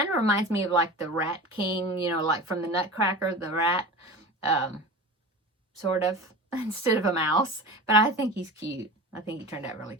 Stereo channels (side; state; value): both; normal; correlation 0.32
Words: of reminds me of like the Rat King, like from the Nutcracker, the rat, sort of, instead of a mouse. But I think he's cute. I think he turned out really